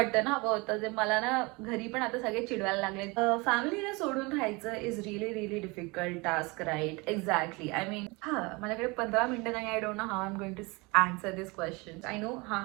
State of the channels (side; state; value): left; quieter; 26.2 dB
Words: हवं होतं, जे मला ना घरी पण आता सगळे चिडवायला लागले. फॅमिलीला सोडून राहायचं is really difficult task, right? Exactly. I mean माझ्याकडे 15 मिनिटं नाही. I don't know how I am going to answer this question. I know